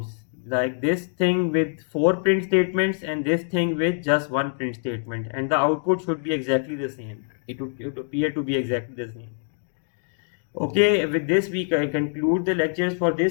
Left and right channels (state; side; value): silent; right; 62 dB below the other